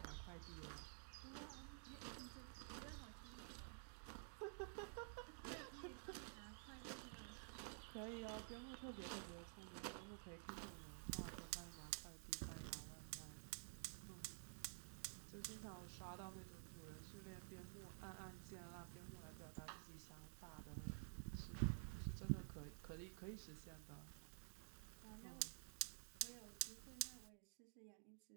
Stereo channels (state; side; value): silent; left; digital silence